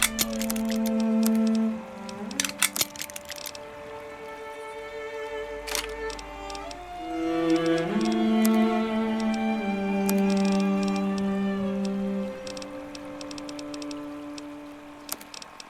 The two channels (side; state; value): both; identical; correlation 1.00